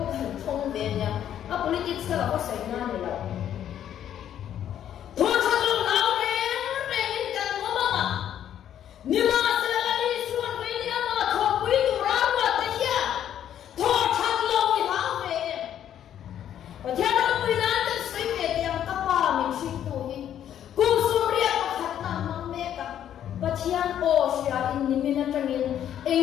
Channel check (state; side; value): quieter; right; 10.4 dB